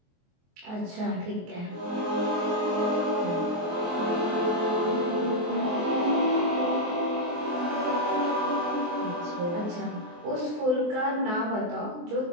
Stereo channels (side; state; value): left; late; 23 ms